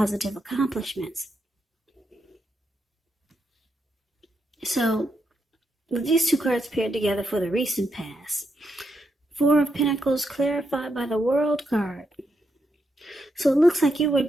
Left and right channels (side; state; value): both; normal; correlation 0.82